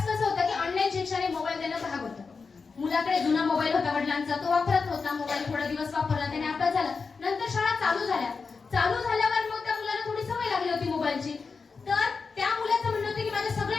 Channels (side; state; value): right; quieter; 4.8 dB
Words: कसं होतं की ऑनलाईन शिक्षण मोबाईल देणं भाग होतं. मुलाकडे जुना मोबाईल होता वडिलांचा, तो वापरत होता मोबाईल, थोडा दिवस वापरला, त्याने अभ्यास झाला. नंतर शाळा चालू झाल्यावर मग त्या मुलाला थोडी सवय लागली होती मोबाईलची. तर त्या मुलाचं म्हणणं होतं की माझ्या